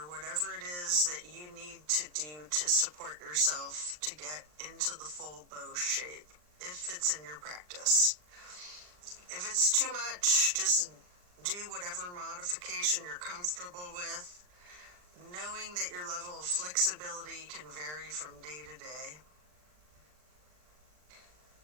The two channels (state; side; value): late; left; 39 ms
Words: whatever it is that you need to do to support yourself to get into the full bow shape, if it's in your practice. If it's too much, just do whatever modification you're comfortable with, knowing that your level of flexibility can vary from day to day.